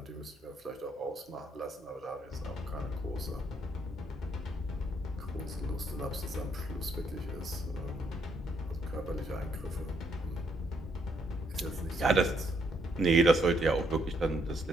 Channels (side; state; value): both; normal; correlation 0.72